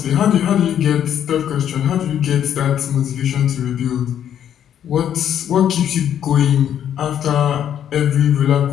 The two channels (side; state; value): right; quieter; 9.8 dB